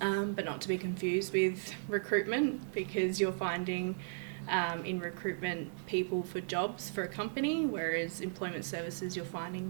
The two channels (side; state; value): left; silent; digital silence